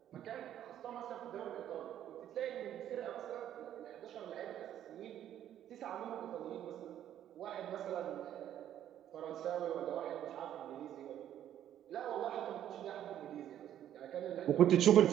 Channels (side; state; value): left; quieter; 11.0 dB